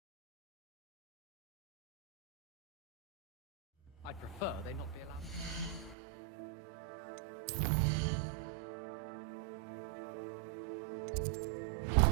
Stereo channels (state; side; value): drops out; left; at 6.0 s